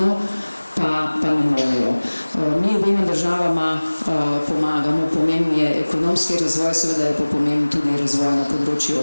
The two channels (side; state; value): both; inverted; correlation -1.00